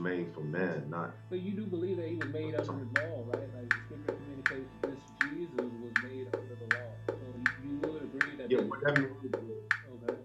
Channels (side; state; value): both; identical; correlation 1.00